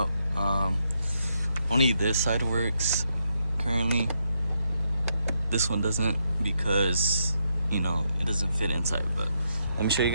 Only this side works currently. This one doesn't because, you know, it doesn't fit inside. But let me show you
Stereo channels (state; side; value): inverted; both; correlation -0.80